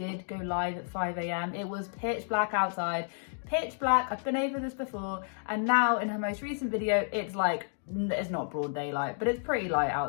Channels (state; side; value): silent; right; digital silence